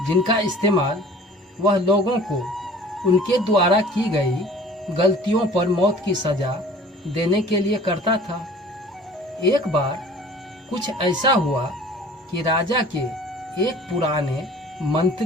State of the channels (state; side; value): normal; both; correlation 0.47